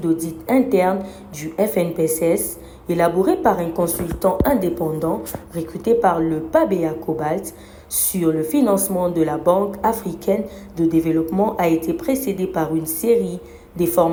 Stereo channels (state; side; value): identical; both; correlation 1.00